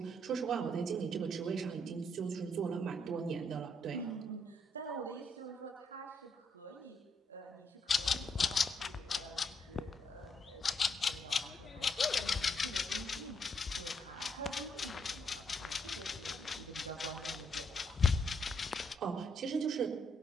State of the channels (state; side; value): normal; both; correlation 0.75